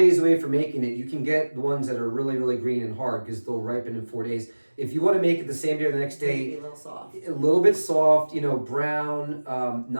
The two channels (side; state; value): both; inverted; correlation -1.00